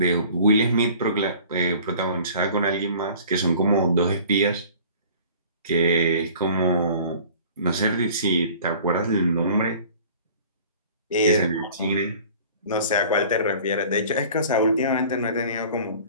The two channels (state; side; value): inverted; both; correlation -0.46